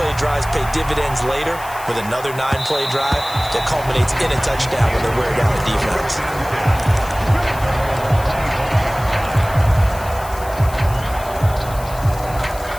drives pay dividends later with another 9-play drive that culminates in a touchdown when they wear down the defense.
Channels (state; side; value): noise; left; hiss, 16 dB below the sound